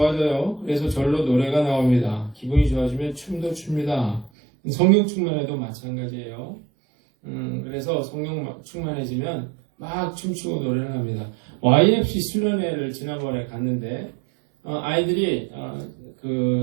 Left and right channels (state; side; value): drops out; left; at 4.3 s